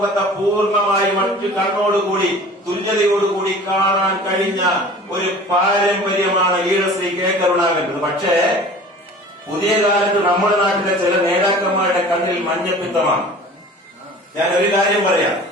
പൂർണ്ണമായി മറ്റു കണ്ണോടുകൂടി തുല്യതയോടുകൂടി കാണാൻ കഴിഞ്ഞ ഒരു പാരമ്പര്യമാണ് ലീഡർ ശ്രീ കെ കരുണാകരൻ. പക്ഷേ പുതിയ കാലത്ത് നമ്മുടെ നാട്ടിലെ ചില നേതാക്കന്മാരുടെ കണ്ണിൽ മഞ്ഞപ്പിത്തമാണ്. ഞാൻ ഒരു കാര്യം പറയാം.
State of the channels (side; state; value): both; normal; correlation 0.43